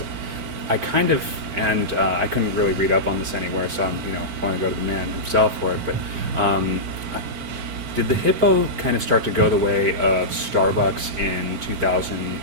I kind of, and I couldn't really read up on this anywhere, so I'm, want to go to the man himself for it. But did the Hippo kind of start to go the way of Starbucks in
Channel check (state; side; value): late; left; 4.4 ms